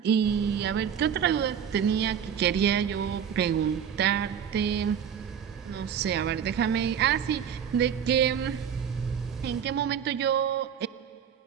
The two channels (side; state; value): left; quieter; 8.2 dB